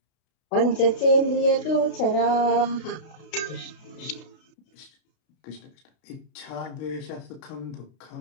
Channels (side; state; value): right; late; 32 ms